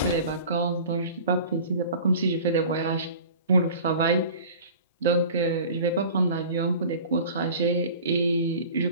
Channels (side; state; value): both; inverted; correlation -0.42